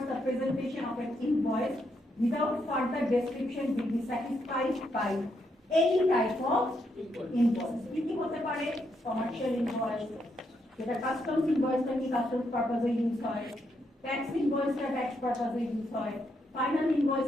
the presentation of an invoice without further description will be satisfied by any type of invoice. কি হতে পারে? কমার্শিয়াল ইনভয়েস, যেটা কাস্টমস ইনভয়েসটা কি কাস্টমস পারপাসে ইউজ হয়, ট্যাক্স ইনভয়েসটা ট্যাক্স পারপাসে ইউজ হয়, ফাইনাল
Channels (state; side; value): normal; both; correlation 0.78